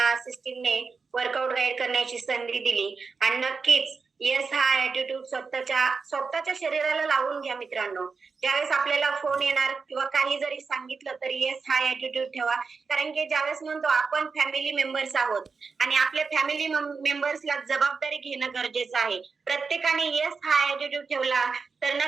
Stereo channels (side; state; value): left; quieter; 4.9 dB